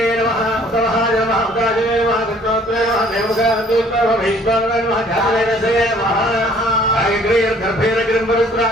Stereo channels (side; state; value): both; normal; correlation 0.57